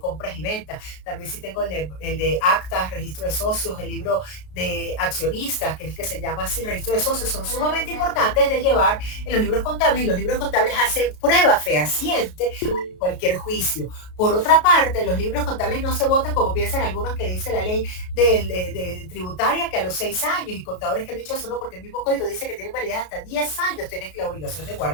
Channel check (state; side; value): late; right; 33 ms